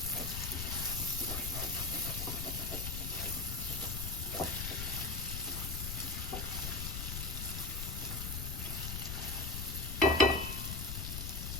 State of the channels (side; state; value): left; noise; rumble, 4 dB below the sound